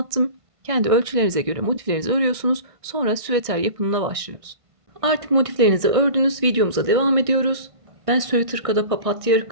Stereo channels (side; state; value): left; late; 1.6 ms